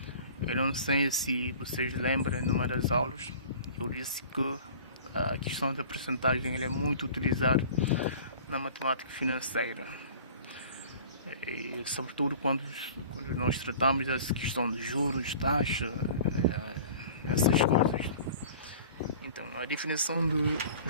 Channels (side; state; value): both; inverted; correlation -0.44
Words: Eu não sei se vocês lembram, numa das aulas eu disse que a questão da percentagem é muito utilizada na matemática financeira, e sobretudo quando nós tratamos dessa questão de juros, taxa, essas coisas. Então, a definição de